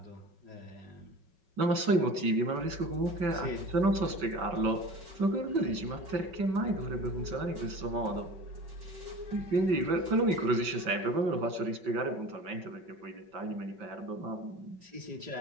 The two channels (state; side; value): late; left; 5.3 ms